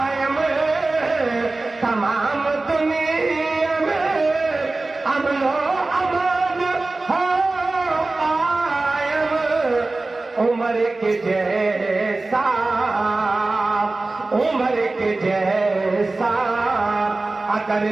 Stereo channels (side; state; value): left; quieter; 3.2 dB